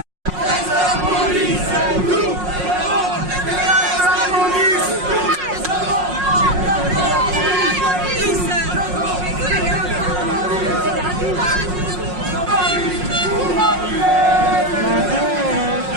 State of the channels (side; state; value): left; late; 5.5 ms